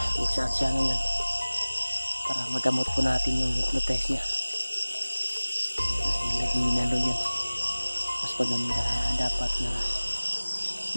saan siya ngayon para magamot po natin yung hypnotize niya. Dahil naginalo yan, mas maganda dapat na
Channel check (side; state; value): both; inverted; correlation -1.00